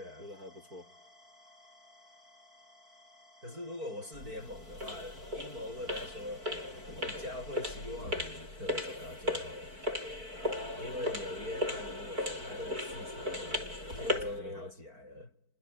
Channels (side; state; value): left; late; 4.5 ms